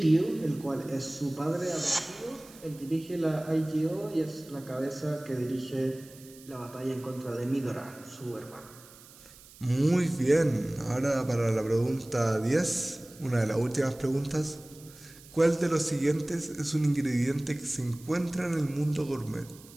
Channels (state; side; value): noise; right; hiss, 21 dB below the sound